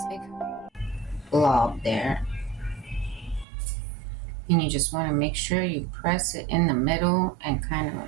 big blob there. And you just want to make sure you press it in the middle and kind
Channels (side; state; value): left; drops out; at 3.5 s